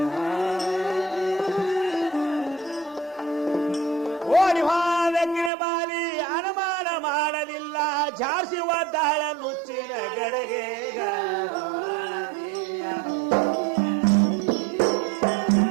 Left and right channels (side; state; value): left; drops out; at 5.5 s